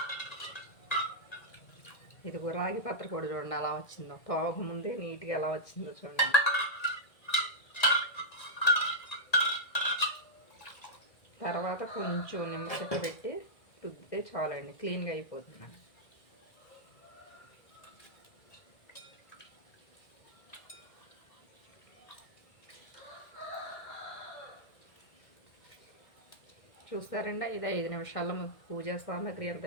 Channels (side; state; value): right; late; 1.9 ms